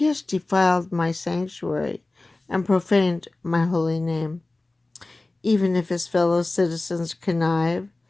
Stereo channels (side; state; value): right; quieter; 3.0 dB